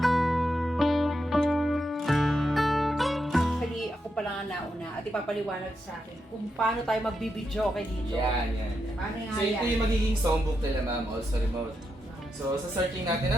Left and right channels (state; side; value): normal; both; correlation 0.84